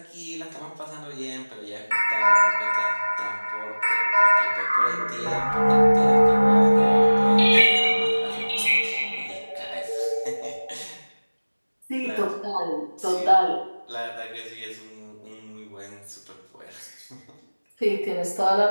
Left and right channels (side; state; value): both; inverted; correlation -1.00